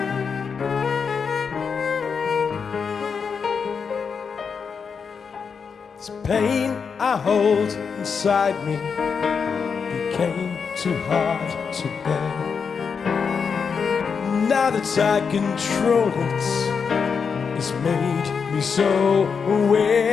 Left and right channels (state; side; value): quieter; right; 6.0 dB